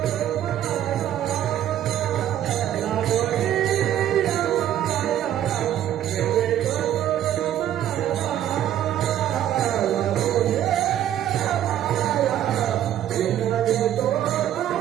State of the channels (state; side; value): quieter; left; 11.4 dB